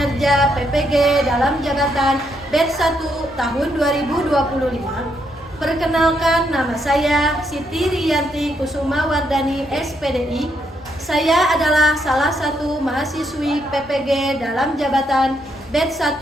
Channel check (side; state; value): both; normal; correlation 0.76